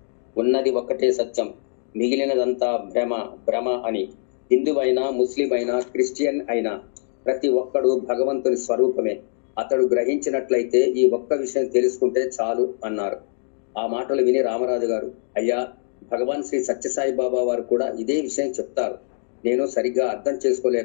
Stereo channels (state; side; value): silent; right; digital silence